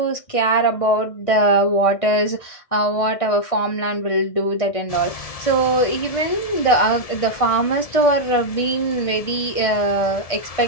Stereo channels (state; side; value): late; right; 1.6 ms